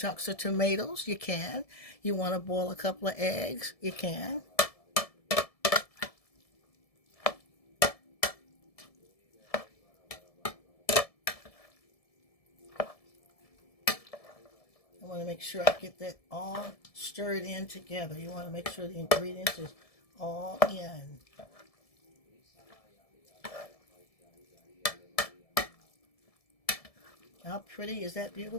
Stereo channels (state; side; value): late; right; 1.7 ms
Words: of tomatoes? You can. You want to boil a couple of eggs? You can. I want to make sure I get that all stirred in together. You want to make sure the ingredients is all in. How pretty is that?